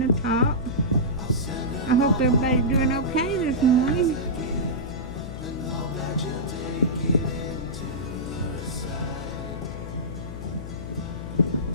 the top. I hope everybody's doing okay this morning.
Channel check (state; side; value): noise; left; hum, 9 dB below the sound